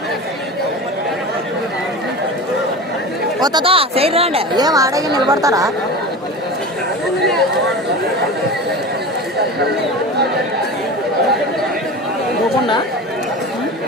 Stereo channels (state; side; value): normal; both; correlation 0.30